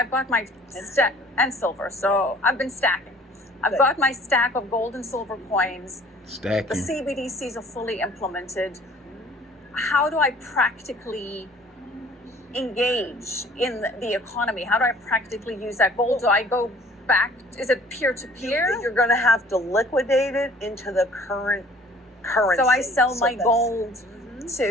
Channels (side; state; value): both; normal; correlation 0.52